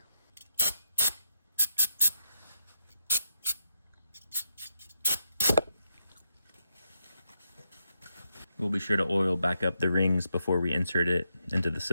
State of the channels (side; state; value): both; inverted; correlation -0.82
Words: We'll be sure to oil back up the rings before we insert it into the